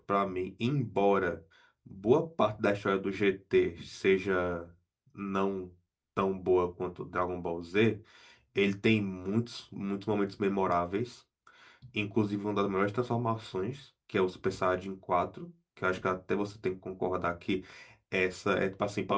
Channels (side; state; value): both; identical; correlation 1.00